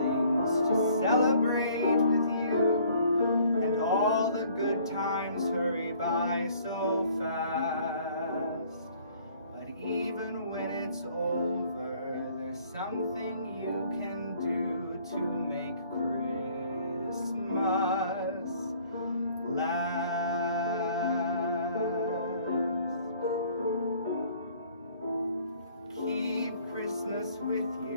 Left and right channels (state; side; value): inverted; both; correlation -0.58